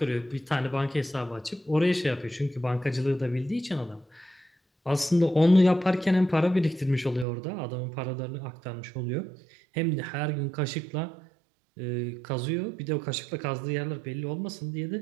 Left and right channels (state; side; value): drops out; left; at 7.2 s